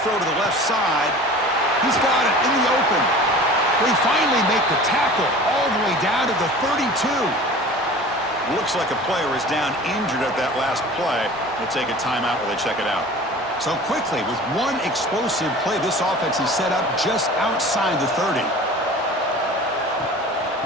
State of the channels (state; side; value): normal; both; correlation 0.41